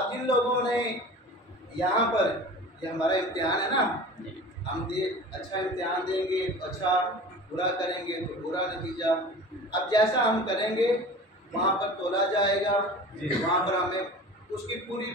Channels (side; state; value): both; normal; correlation 0.38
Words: जिन लोगों ने यहाँ पर, ये हमारा इम्तिहान है ना, हम अच्छा इम्तिहान देंगे तो अच्छा, बुरा करेंगे तो बुरा नतीजा। अब जैसा हम करेंगे वहाँ पर तोला जाएगा, वहाँ पर हमें उसकी पूरी